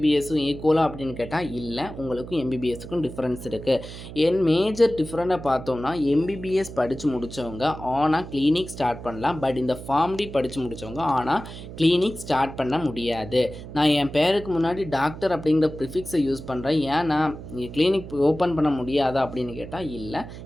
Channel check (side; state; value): right; noise; hum, 12 dB below the sound